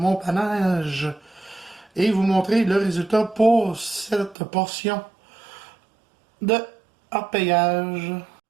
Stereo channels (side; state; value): left; drops out; at 4.4 s